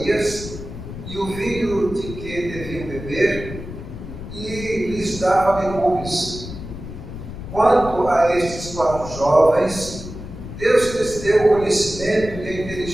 e o vinho de que deviam beber, e lhes dava legumes. Quanto a estes 4 jovens, Deus lhes deu o conhecimento e a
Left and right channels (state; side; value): noise; left; rumble, 11 dB below the sound